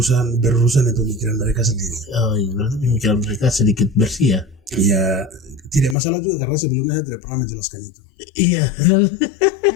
itu pikiran mereka sendiri. Oh iya, berarti pemikiran mereka sedikit bersih ya? Ya tidak masalah juga karena sebelumnya saya tidak pernah menjelaskan itu. Iya.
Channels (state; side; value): drops out; right; at 6.0 s